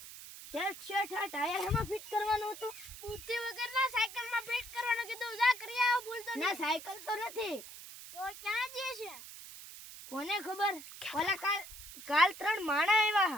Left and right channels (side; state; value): right; noise; hiss, 14 dB below the sound